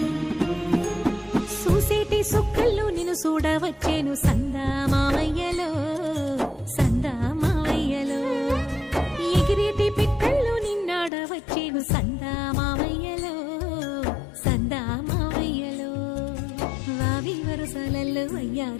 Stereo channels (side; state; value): right; drops out; at 11.1 s